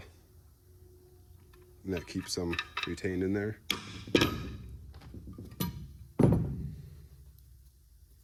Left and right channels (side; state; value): both; identical; correlation 1.00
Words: And that keeps them retained in there.